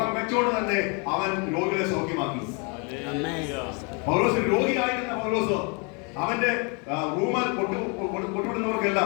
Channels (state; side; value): quieter; right; 33.8 dB